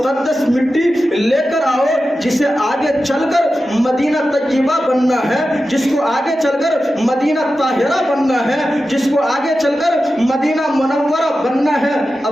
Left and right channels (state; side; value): normal; both; correlation 0.92